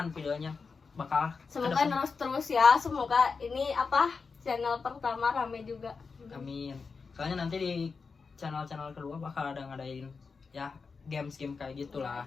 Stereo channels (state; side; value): quieter; right; 4.9 dB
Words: videonya, bakal Semoga kedepan. terus ya. Semoga ini channel pertama rame juga. Amin. Soalnya nanti di channel-channel kedua bakal ada ngadain ya games-game kayak gitulah,